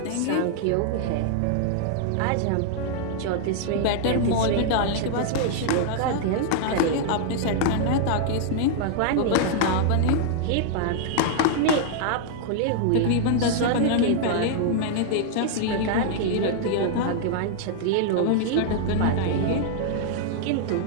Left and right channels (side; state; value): both; different; correlation -0.01